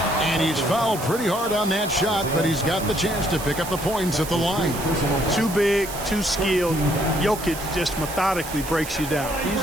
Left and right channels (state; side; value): noise; right; hiss, 11 dB below the sound